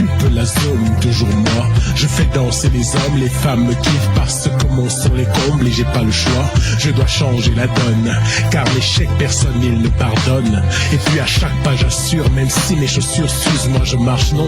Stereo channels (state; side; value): identical; both; correlation 1.00